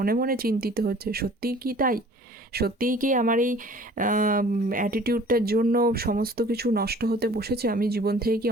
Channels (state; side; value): normal; both; correlation 0.50